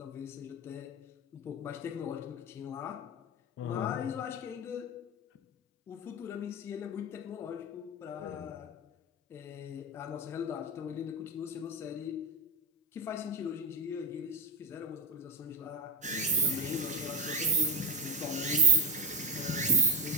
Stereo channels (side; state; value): both; normal; correlation 0.15